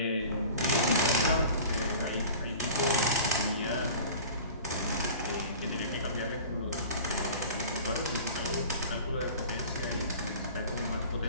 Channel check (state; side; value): inverted; both; correlation -0.41